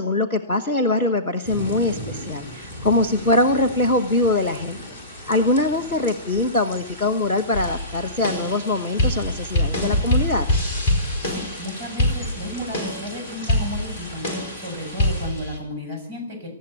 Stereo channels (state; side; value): inverted; both; correlation -0.31